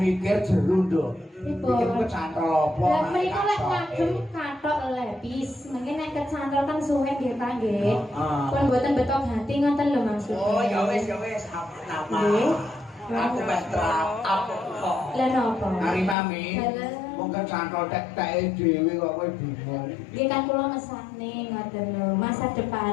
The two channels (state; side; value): drops out; right; at 16.2 s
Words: jeru nduk. Mikir kecantol apa? Lah mriko lek ngagem kathok lepis, mungkin nek kecantol kan suwe nggih ta nggih. Pun mboten betok hati ngoten lho maksudnya. Oh, ya wis, apa-apa. Aku betrap apa kok. Lah napa? Ari mami, wong kecantol tek-teke dhewe kok kowe bingung. Nggih kan kula mesane ngoten lho, masa